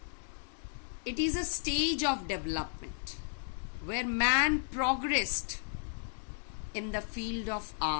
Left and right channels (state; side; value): silent; right; digital silence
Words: it is a stage of development where man progressed in the field of